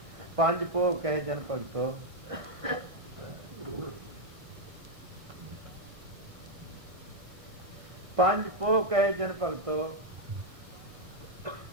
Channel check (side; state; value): left; late; 1.5 ms